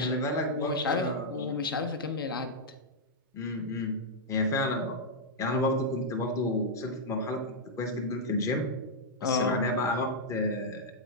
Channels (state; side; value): normal; both; correlation -0.06